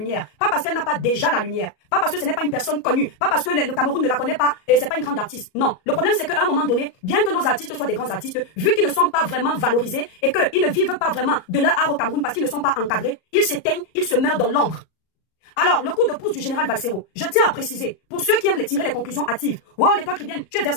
Pas parce qu'elle n'a pas déjà la lumière, pas parce que ce n'est pas une personne connue, pas parce que le Cameroun ne la connaît pas et c'est pas une grande artiste. Non, le problème c'est qu'à un moment donné, bien que nos artistes soient des grands artistes, vu qu'ils ne sont pas vraiment valorisés et qu'ils ne vivent pas vraiment de leur art au Cameroun parce qu'ils ne sont pas encadrés, ils s'éteignent, ils se meurent dans l'ombre. Alors, le coup de pouce du général Valsero, je tiens à préciser, pour ceux qui aiment tirer les conclusions hâtives, wow, les toi Cribienne, tu es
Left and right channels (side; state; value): right; late; 38 ms